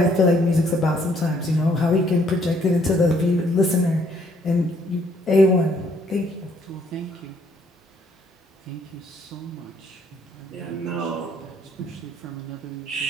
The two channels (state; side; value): normal; both; correlation 0.66